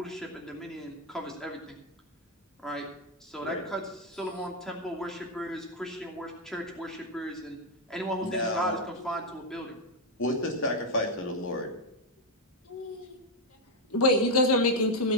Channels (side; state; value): both; normal; correlation 0.03